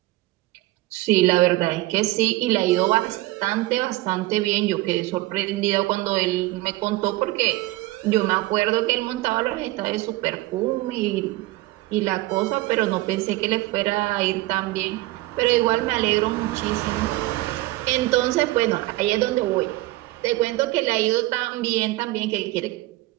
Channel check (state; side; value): quieter; left; 19.0 dB